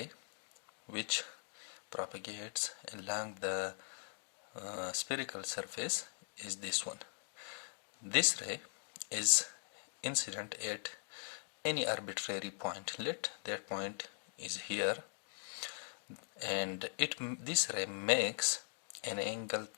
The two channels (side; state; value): right; silent; 51 dB below the other